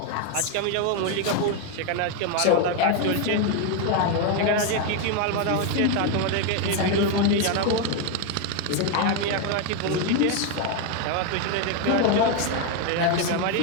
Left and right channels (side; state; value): both; different; correlation 0.01